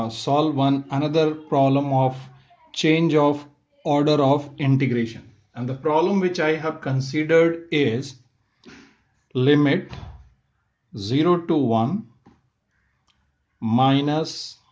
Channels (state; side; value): identical; both; correlation 1.00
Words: solve another problem of change of order of integration. And the problem which I have considered is limit 0 to 1 minus